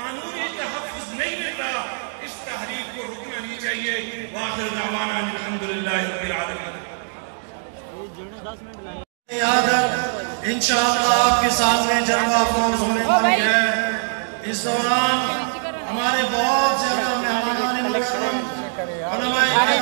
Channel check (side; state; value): left; silent; 64 dB below the other